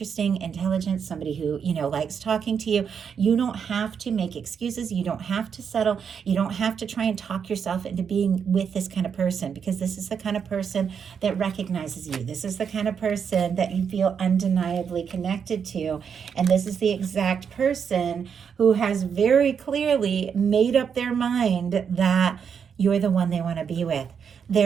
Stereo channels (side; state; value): left; quieter; 7.0 dB